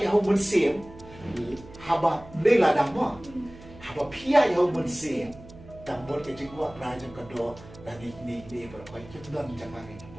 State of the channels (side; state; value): right; noise; hum, 19 dB below the sound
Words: yang hau mensim. Haba Blei dah mah, haba pia yang mensim, dan buat kejengua pelajar kedua dan ini berapa kita dah menjaga ini